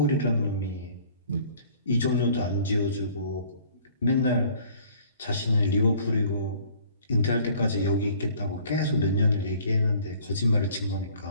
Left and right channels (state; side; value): inverted; both; correlation -0.54